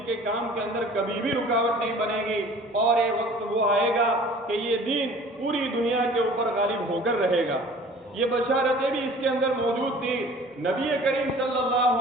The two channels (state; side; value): normal; both; correlation 0.47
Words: کے کام کے اندر کبھی بھی رکاوٹ نہیں بنے گی، اور یہ وقت وہ آئے گا کہ یہ دین پوری دنیا کے اوپر غالب ہو کر رہے گا۔ یہ بشارتیں بھی اس کے اندر موجود تھی۔ نبی کریم صلی اللہ